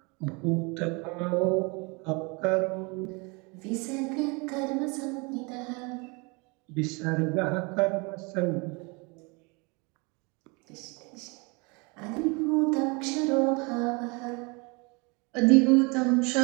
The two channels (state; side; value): quieter; left; 29.6 dB